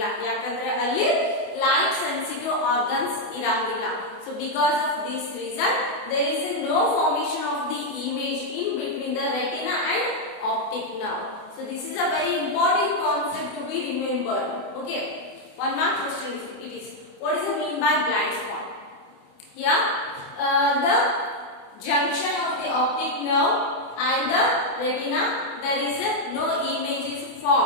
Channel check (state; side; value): late; right; 28 ms